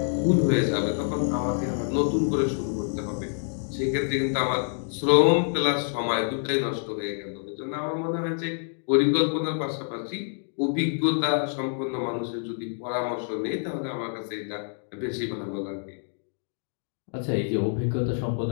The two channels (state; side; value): silent; right; 60 dB below the other